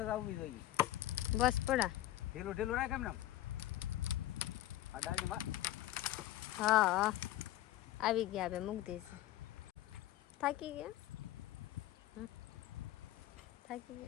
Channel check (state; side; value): quieter; right; 14.7 dB